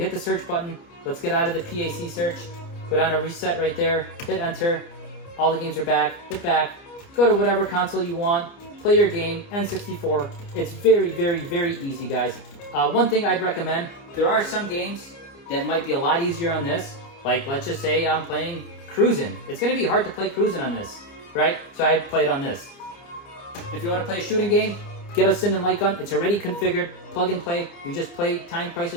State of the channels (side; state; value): right; late; 29 ms